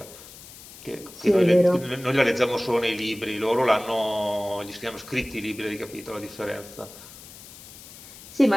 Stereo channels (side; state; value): left; noise; hiss, 17 dB below the sound